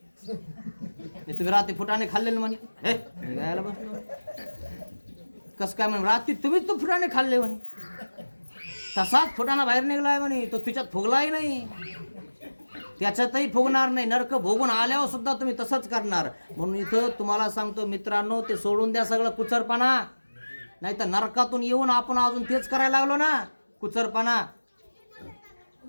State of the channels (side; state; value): both; inverted; correlation -1.00